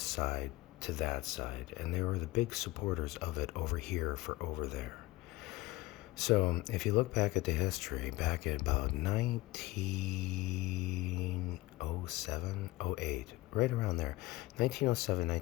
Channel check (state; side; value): quieter; right; 19.3 dB